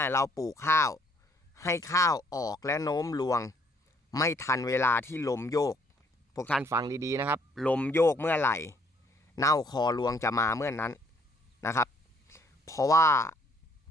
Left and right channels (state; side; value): normal; both; correlation 0.65